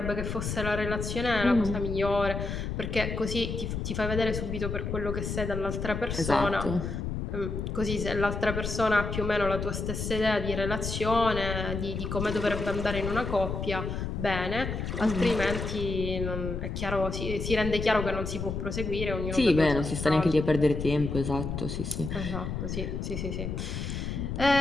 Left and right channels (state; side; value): noise; left; rumble, 4 dB below the sound